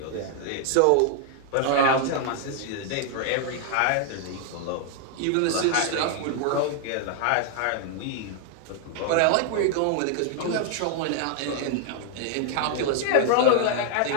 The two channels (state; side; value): different; both; correlation 0.00